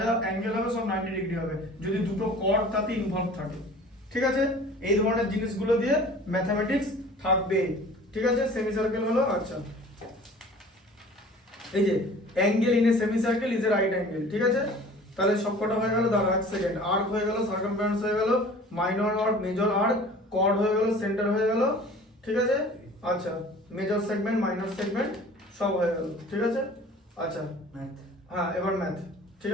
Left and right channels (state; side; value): normal; both; correlation 0.46